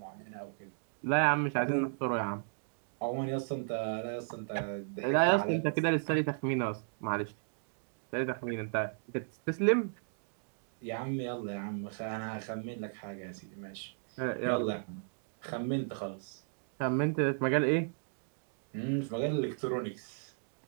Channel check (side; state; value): left; silent; digital silence